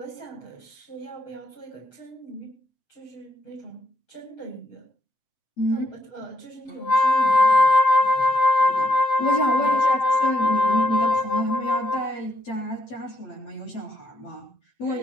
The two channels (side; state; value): right; late; 7.6 ms